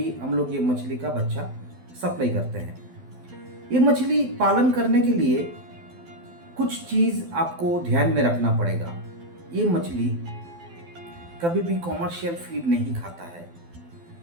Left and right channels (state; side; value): late; left; 12 ms